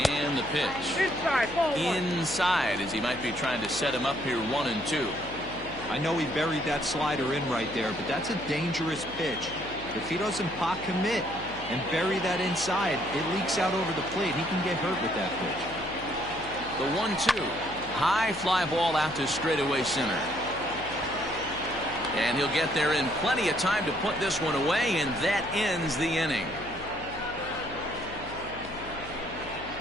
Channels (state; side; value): noise; left; hum, 15 dB below the sound